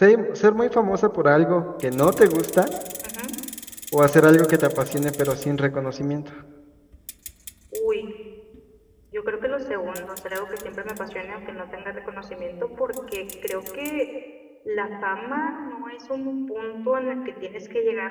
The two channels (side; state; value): both; identical; correlation 1.00